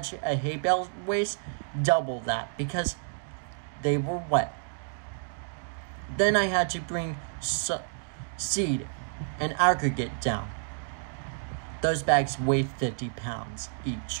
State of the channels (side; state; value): left; silent; digital silence